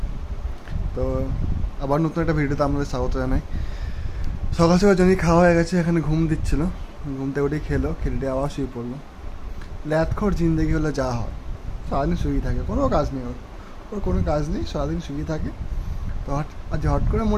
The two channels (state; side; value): identical; both; correlation 1.00